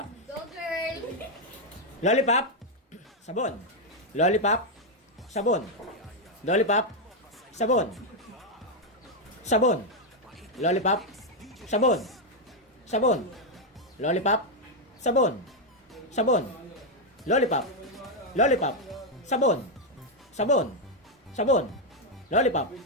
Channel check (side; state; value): both; normal; correlation 0.01